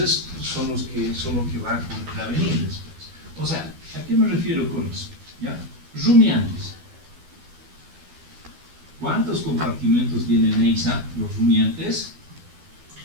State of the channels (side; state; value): left; late; 12 ms